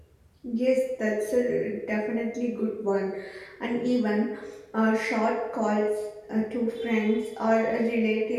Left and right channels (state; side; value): identical; both; correlation 1.00